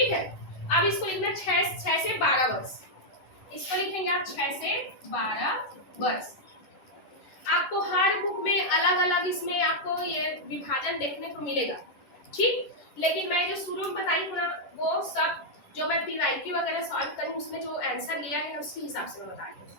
है, अब इसको लिखना 6 से 12 वर्ष, इसको लिखेंगे आप 6 से 12 वर्ष। आपको हर बुक में अलग अलग इसमें आपको ये विभाजन देखने को मिलेगा। ठीक, लेकिन मैं जो शुरू में बताई हूँ ना, वो सब जो मैं पीवाईक्यू वगैरह सॉल्व करूँ उसमें जो आंसर लिया है उसके हिसाब से मैं बता रही हूँ।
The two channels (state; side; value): late; right; 10 ms